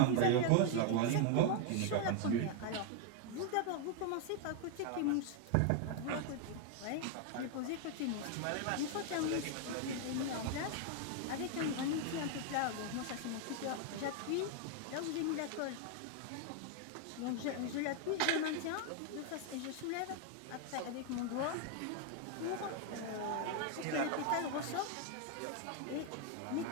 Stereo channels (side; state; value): both; different; correlation 0.00